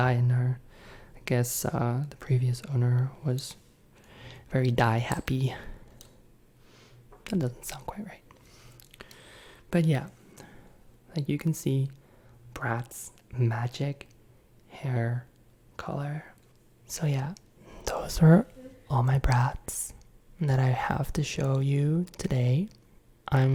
in her. I guess the previous owner was very dye happy. That doesn't sound quite right. But yeah, like you can see, Bratz Magic Hair Color. So yeah, those are all my Bratz that I have to show you today.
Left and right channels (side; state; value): both; identical; correlation 1.00